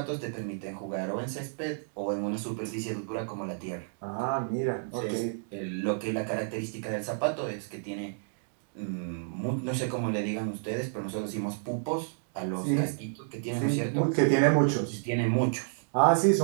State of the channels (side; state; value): left; silent; digital silence